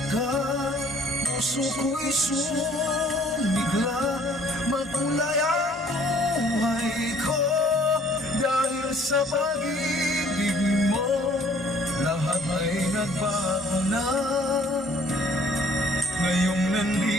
ka, puso ko'y sumigla. Makulay ang buhay ko dahil sa pag-ibig mo, lahat ay nagbago na. Ngayong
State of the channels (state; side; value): normal; both; correlation 0.58